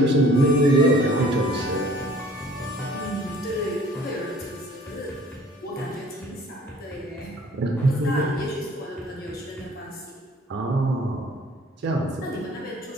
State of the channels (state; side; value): normal; both; correlation 0.53